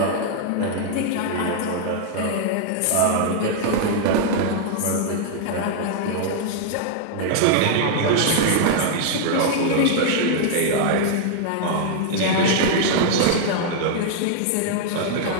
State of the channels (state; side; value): different; both; correlation -0.01